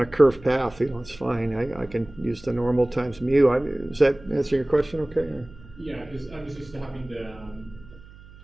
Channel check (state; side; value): noise; right; hum, 21 dB below the sound